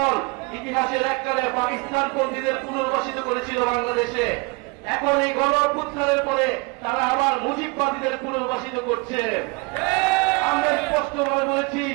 ইতিহাসের এককালে পাকিস্তানপন্থীদের পুনর্বাসিত করেছিল বাংলাদেশে, এখন এই গণ অভ্যুত্থানের পরে তারা আবার মুজিববাদীদের পুনর্বাসিত করছে। আমরা স্পষ্টভাবে বলেছি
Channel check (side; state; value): left; quieter; 28.0 dB